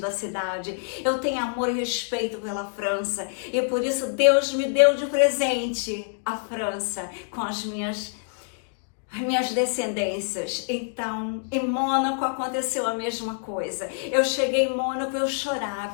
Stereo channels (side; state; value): right; silent; digital silence